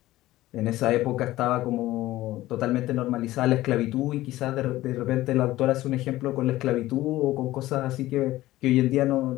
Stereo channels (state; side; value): quieter; right; 16.4 dB